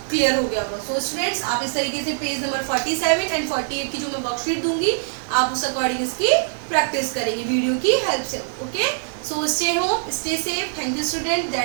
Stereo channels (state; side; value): silent; left; 64 dB below the other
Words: क्लियर हो गया होगा। सो स्टूडेंट्स आप इस तरीके से पेज नंबर 47 एंड 48 की जो मैं वर्कशीट दूंगी, आप उस अकॉर्डिंग इसकी प्रैक्टिस करेंगे वीडियो की हेल्प से। Okay, so stay home, stay safe. Thank you student,